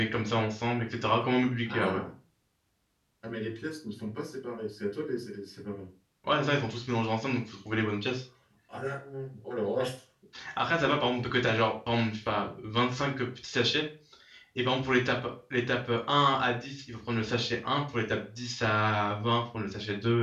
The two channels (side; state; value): both; identical; correlation 1.00